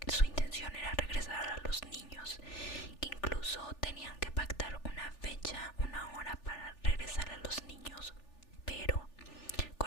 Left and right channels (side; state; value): right; late; 3.4 ms